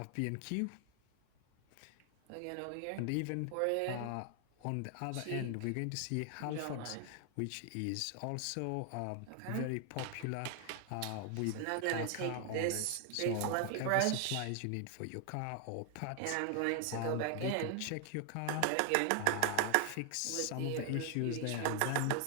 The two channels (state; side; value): different; both; correlation 0.00